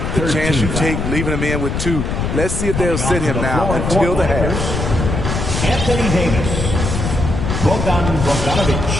The chance you take leaving him in with 2. Let's see if they'll sit him now until the half. Anthony Davis. Bogdanovic.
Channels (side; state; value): left; noise; rumble, 2 dB below the sound